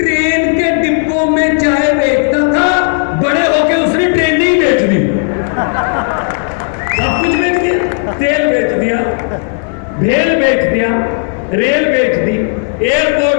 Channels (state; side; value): silent; right; 58 dB below the other